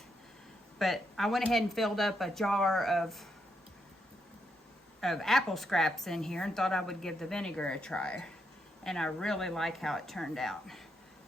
But I went ahead and filled up a jar of apple scraps in here and thought I would give the vinegar a try. And I really like how it turned out.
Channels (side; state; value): both; normal; correlation 0.80